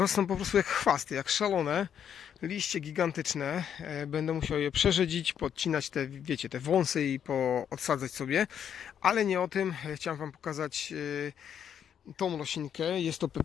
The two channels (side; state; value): right; quieter; 8.7 dB